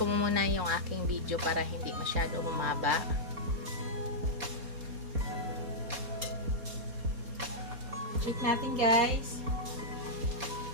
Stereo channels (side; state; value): left; late; 4.2 ms